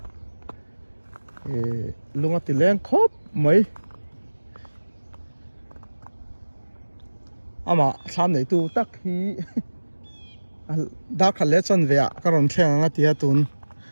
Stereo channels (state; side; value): inverted; both; correlation -1.00